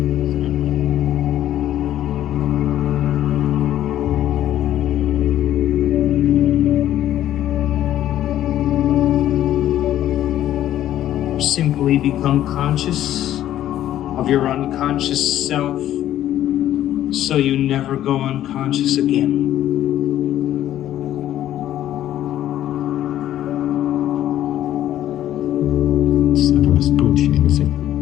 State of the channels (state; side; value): quieter; right; 12.3 dB